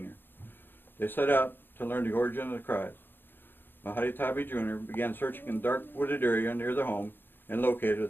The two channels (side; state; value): right; late; 0.099 ms